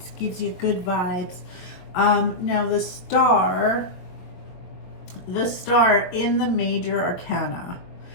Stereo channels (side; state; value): right; late; 22 ms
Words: gives you good vibes. Now, the Star in the major arcana,